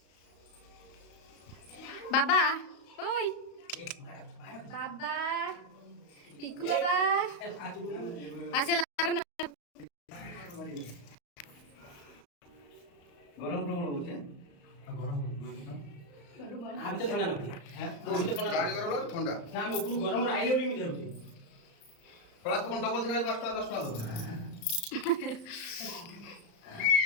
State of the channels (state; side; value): late; right; 35 ms